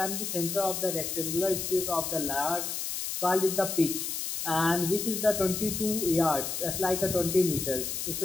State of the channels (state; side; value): noise; left; hiss, 3 dB below the sound